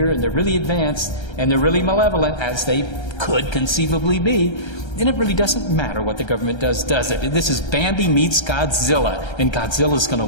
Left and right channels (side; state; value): right; late; 1.3 ms